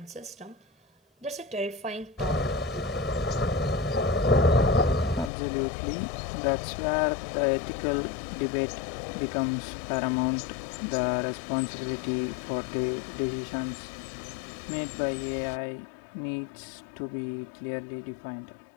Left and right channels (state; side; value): drops out; right; at 5.3 s